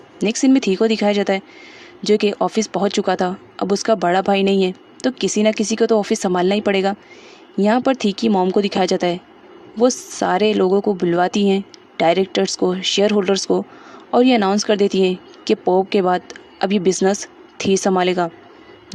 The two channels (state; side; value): identical; both; correlation 1.00